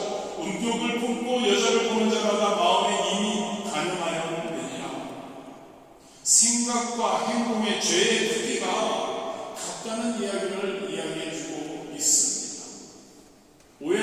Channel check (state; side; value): identical; both; correlation 1.00